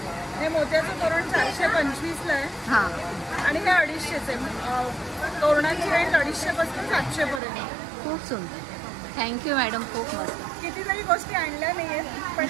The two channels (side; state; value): left; drops out; at 7.4 s